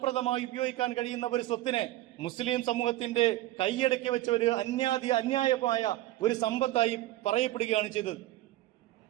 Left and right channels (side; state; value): left; quieter; 16.1 dB